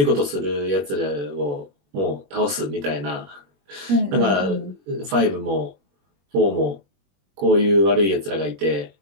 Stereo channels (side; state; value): left; late; 21 ms